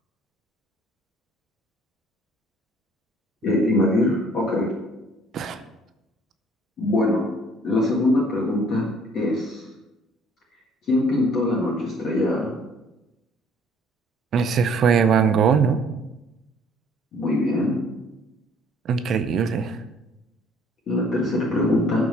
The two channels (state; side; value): normal; both; correlation 0.58